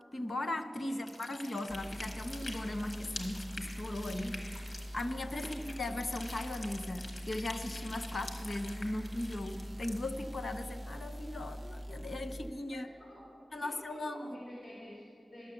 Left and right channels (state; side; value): normal; both; correlation 0.94